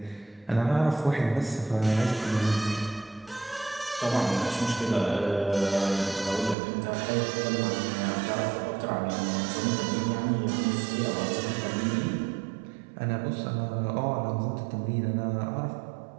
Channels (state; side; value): drops out; left; at 6.6 s